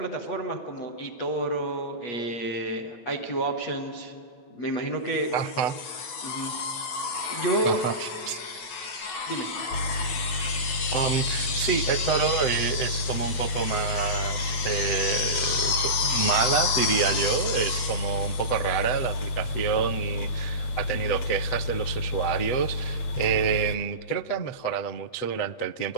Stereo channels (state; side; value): late; right; 9.0 ms